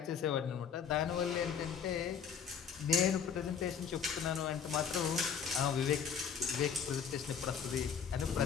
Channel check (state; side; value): quieter; right; 7.1 dB